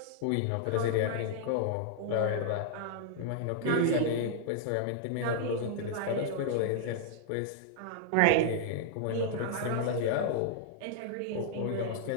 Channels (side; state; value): both; different; correlation -0.01